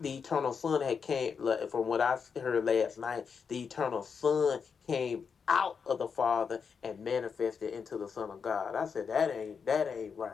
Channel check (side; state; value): right; quieter; 6.1 dB